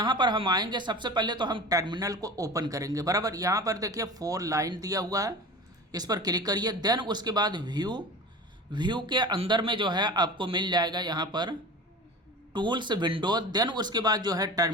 पर हम आएंगे, सबसे पहले तो हम टर्मिनल को ओपन करेंगे। बराबर, यहाँ पर देखिए 4 लाइन दिया हुआ है, इस पर क्लिक करिए। देन उसके बाद व्यू के अंदर में जो है आपको मिल जाएगा यहाँ पर टूल्स विंडो। देन उसके बाद जो है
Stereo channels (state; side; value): normal; both; correlation 0.35